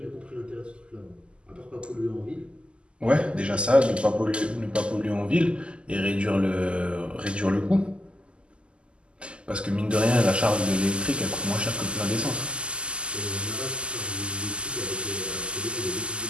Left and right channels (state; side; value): late; left; 0.052 ms